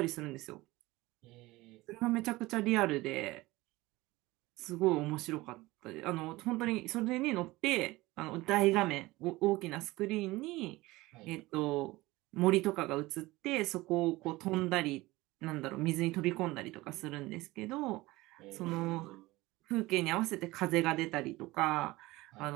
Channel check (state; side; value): quieter; left; 19.9 dB